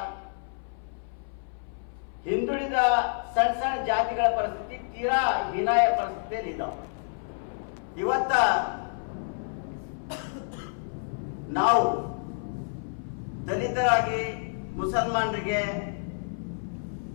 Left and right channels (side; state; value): right; silent; 59 dB below the other